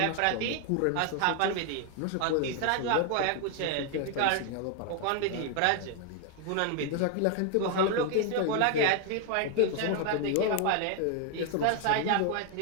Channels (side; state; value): both; different; correlation 0.00